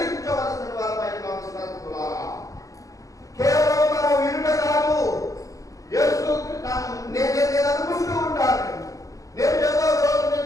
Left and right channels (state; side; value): late; right; 0.16 ms